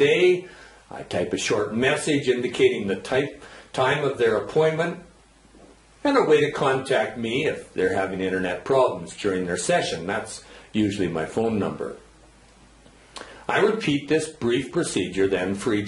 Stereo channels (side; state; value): both; identical; correlation 1.00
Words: I type a short message indicating the time of their appointment and a way to contact me if they're having internet problems during their session. That's usually my phone number. I repeat this brief procedure then for